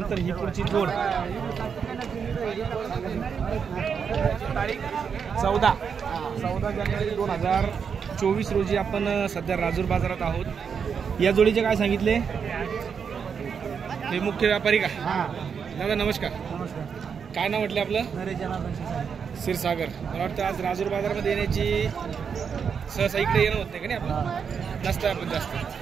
ही पुढची जोड 14 जानेवारी 2024 रोजी आपण सध्या राजूर बाजारात आहोत. या जोडीचे काय सांगितले? हे मुख्य व्यापारी का? दादा नमस्कार. काय नाव म्हटलं आपलं? क्षीरसागर. मला वाटतं आज राजूर बाजारामध्ये येण्याची सहसा इकडे येणं होत नाही का? नाही आपण नसतं आपण जास्त.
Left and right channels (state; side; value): quieter; left; 6.6 dB